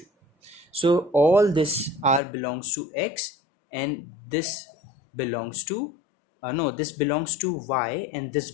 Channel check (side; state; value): right; drops out; at 2.2 s